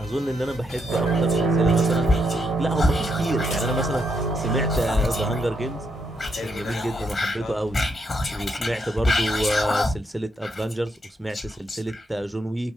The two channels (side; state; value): both; normal; correlation 0.79